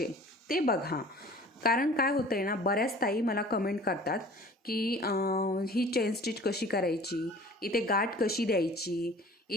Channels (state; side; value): normal; both; correlation 0.46